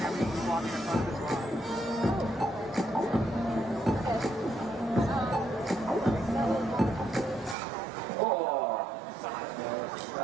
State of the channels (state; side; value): drops out; left; at 7.6 s